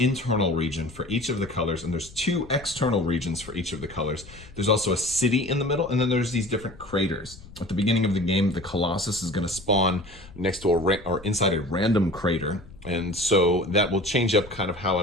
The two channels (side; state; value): left; noise; rumble, 19 dB below the sound